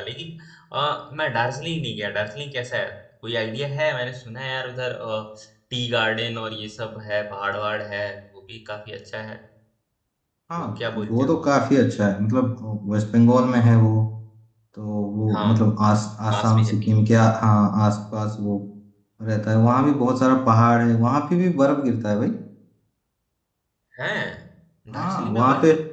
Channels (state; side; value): identical; both; correlation 1.00